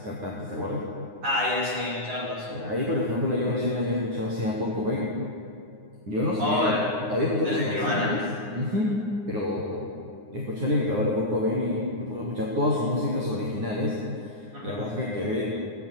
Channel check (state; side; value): late; left; 9.7 ms